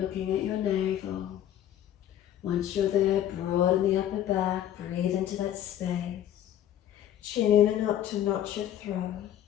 at your navel. Once you're there, broaden the upper back, breathe into that space. Chin in and up to notch your throat.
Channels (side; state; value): right; quieter; 11.3 dB